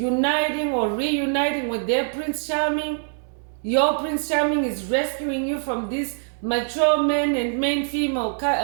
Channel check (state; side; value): silent; left; digital silence